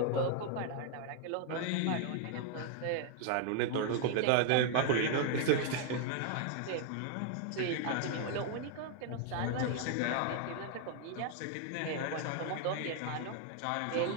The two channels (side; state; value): both; different; correlation 0.00